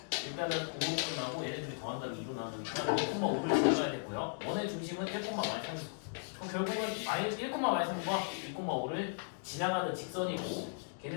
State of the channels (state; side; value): silent; right; digital silence